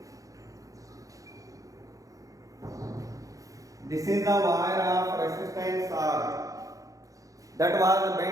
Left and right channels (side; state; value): left; late; 0.16 ms